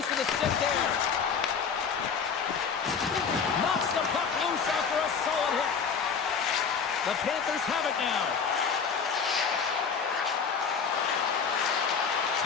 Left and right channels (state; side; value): quieter; right; 6.1 dB